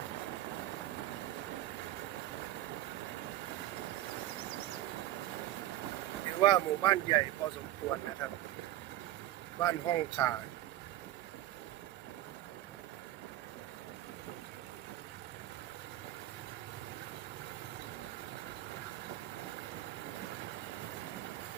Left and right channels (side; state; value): left; quieter; 14.5 dB